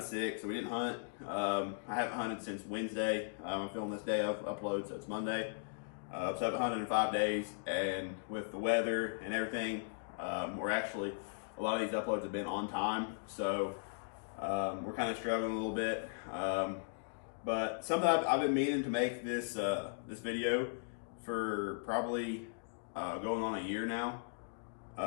sick, so we didn't hunt. I haven't hunted since Wednesday. I'm filming this day of upload, so it's Monday. So I haven't hunted in 5 days, and with the weather and everything, we're actually, a lot of these uploads have been on time, so we're kind of struggling a little bit. But something I've been meaning to make this this video for probably going on a year now.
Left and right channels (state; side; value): silent; right; digital silence